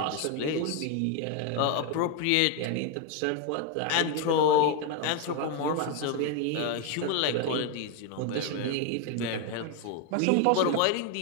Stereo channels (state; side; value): different; both; correlation 0.01